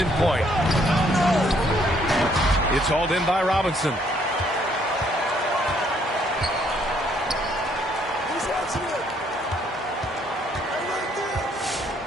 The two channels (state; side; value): normal; both; correlation 0.67